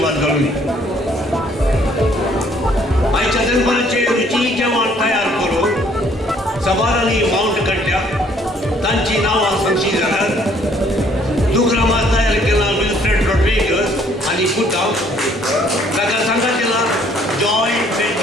घालूं आयच्या दरबाराचेर रुची जेवण तयार करून सवारांनी माउंट काडल्या तांची नांवां सांगची जाल्यार दुग्रामा तयार केला विल्फ्रेड रॉड्रिगस आनी पुता ताका सांगा केला जॉय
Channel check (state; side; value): normal; both; correlation 0.62